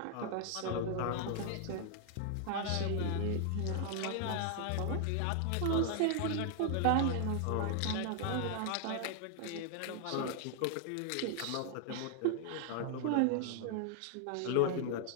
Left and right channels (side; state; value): both; different; correlation 0.00